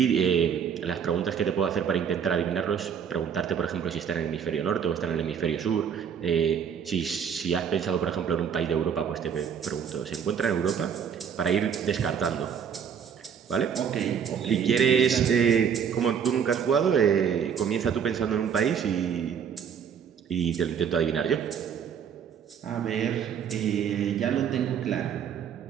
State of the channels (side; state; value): left; quieter; 7.6 dB